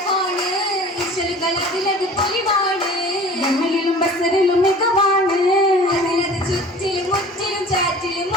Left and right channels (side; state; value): both; normal; correlation 0.44